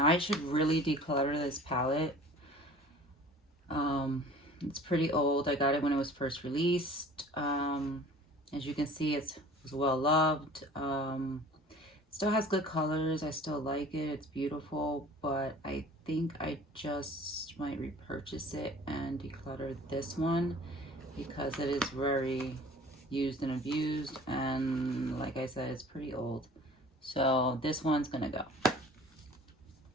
I should really declutter this palette. It's pretty old. I got it when it was first released. As you can see, it was well loved. Still has good colors. I still like it. It's beautiful. But I think I just might repurchase it and declutter this one because it is very used and abused. And like I said, it's pretty old. So this one's gonna go.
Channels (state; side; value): normal; both; correlation 0.46